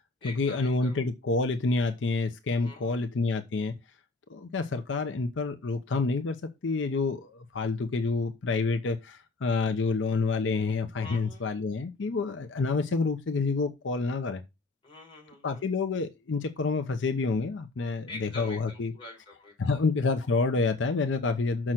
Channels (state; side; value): quieter; right; 3.5 dB